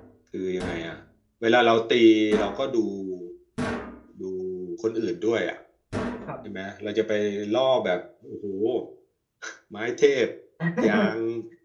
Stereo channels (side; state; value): both; identical; correlation 1.00